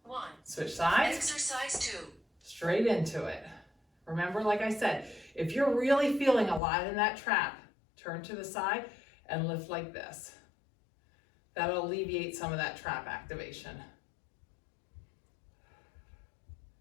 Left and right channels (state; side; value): drops out; right; at 6.6 s